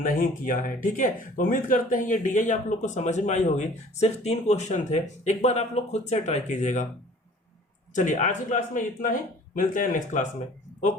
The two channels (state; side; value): normal; both; correlation 0.49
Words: किया है। ठीक है, तो उम्मीद करते हैं ये DI आप लोग को समझ में आई होगी। सिर्फ 3 क्वेश्चन थे, एक बार आप लोग खुद से ट्राई कीजिएगा। चलिए आज की क्लास में इतना ही, मिलते हैं नेक्स्ट क्लास में।